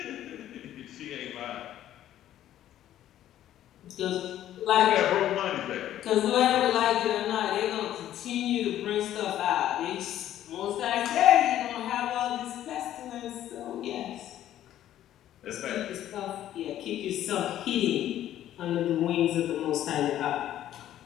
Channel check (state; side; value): quieter; right; 12.2 dB